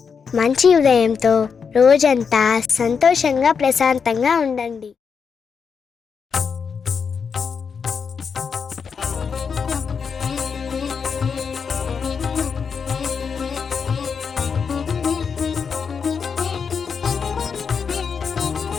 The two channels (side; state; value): right; quieter; 6.1 dB